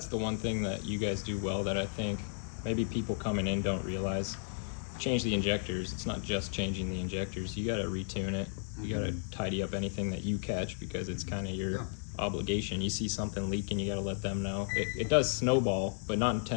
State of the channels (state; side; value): silent; right; digital silence